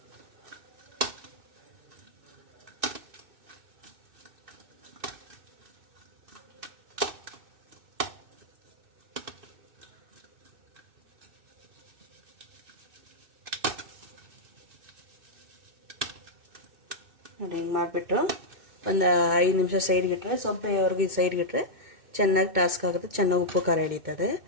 ನೋಡಿ, ಹಿಂಗೆ ಮಾಡಿಬಿಟ್ಟು ಒಂದು 5 ನಿಮಿಷ ಸೈಡ್ಗಿಟ್ರೆ, ಸೊಪ್ಪೆವರೆಗೂ ಸೈಡ್ಗಿಟ್ರೆ ಚೆನ್ನಾಗಿ ಟಾಸ್ಕ್ ಆಗುತ್ತೆ. ಚೆನ್ನಾಗಿ ಉಪ್ಪು ಖಾರ ಹಿಡಿತದೆ.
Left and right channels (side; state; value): left; late; 2.6 ms